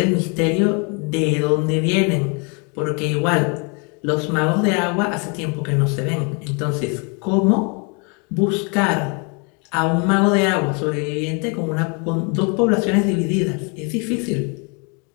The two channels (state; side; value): quieter; right; 34.6 dB